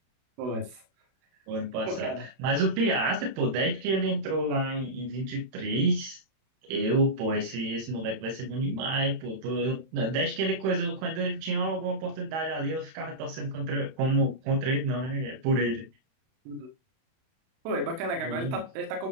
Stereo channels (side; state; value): left; late; 31 ms